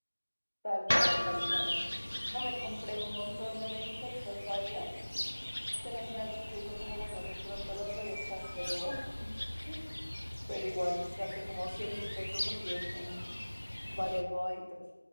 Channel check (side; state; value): both; inverted; correlation -1.00